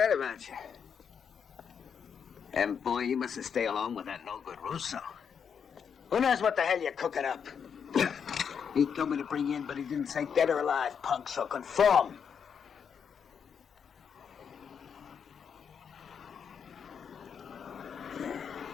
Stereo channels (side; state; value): right; quieter; 7.1 dB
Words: about you. And boy, you mustn't stay alone with that no-good Russo. Who knows what the hell you're cooking up? He told me to bring you in, but he didn't say dead or alive, punk, so conform.